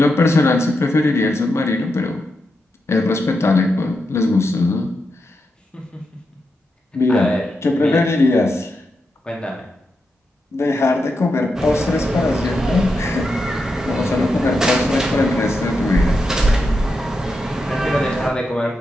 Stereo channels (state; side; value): normal; both; correlation 0.86